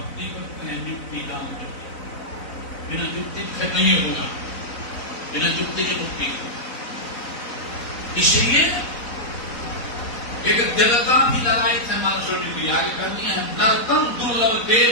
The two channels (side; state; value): right; late; 4.0 ms